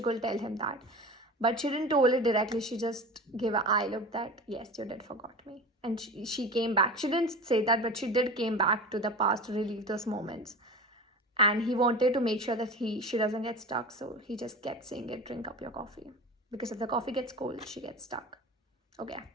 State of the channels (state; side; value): normal; both; correlation 0.32